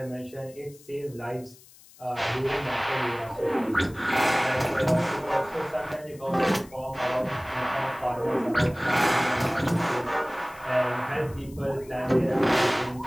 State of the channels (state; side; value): noise; left; hiss, 24 dB below the sound